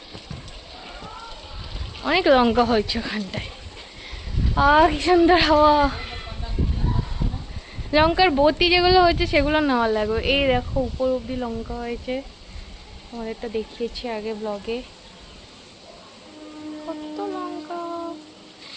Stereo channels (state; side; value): identical; both; correlation 1.00